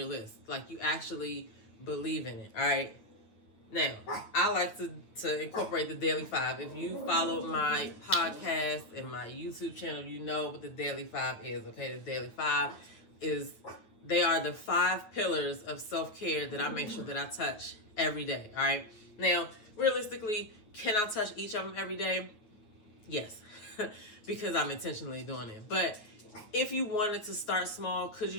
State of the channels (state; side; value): late; right; 9.0 ms